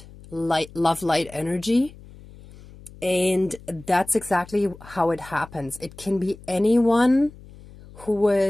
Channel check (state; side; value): noise; left; hum, 20 dB below the sound